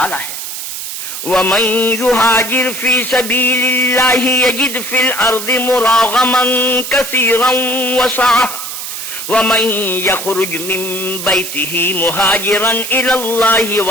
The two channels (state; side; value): noise; right; hiss, 7 dB below the sound